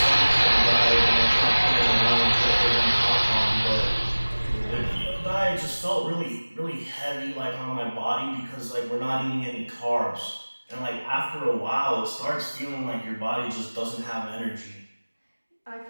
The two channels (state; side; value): inverted; both; correlation -1.00